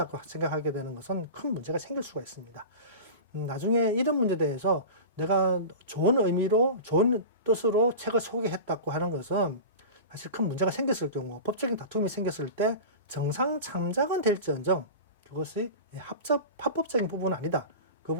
생각하게 되는 것은 큰 문제가 생길 수가 있습니다. 나중에 이런 문제에 대해서 내가 좋은 의미로 좋은 뜻으로 책을 소개했다고 하는 것은 사실 큰 문제가 생겼을 경우 법적인 다툼이 생겼을 때 정상 참작은 될지언정 그것이 합법적인 부분은 아니다. 그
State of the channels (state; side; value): inverted; both; correlation -0.30